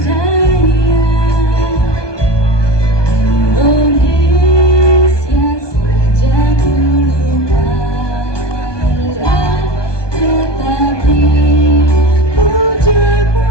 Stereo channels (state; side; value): late; right; 1.2 ms